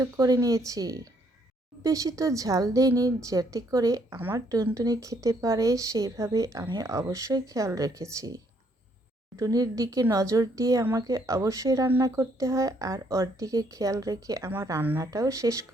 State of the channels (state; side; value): normal; both; correlation 0.69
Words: করে নিয়েছি। বেশি তো ঝাল দেইনি যাতে করে আমার টুনটুনি খেতে পারে, সেইভাবে আমি অবশ্যই খেয়াল রেখেছি। টুনটুনির দিকে নজর দিয়ে আমাকে অবশ্যই রান্না করতে হয় আর ওর দিকে খেয়াল রেখে আমার রান্নাটাও শেষ